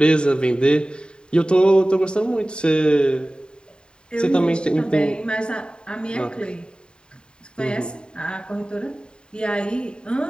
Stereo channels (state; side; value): late; right; 0.050 ms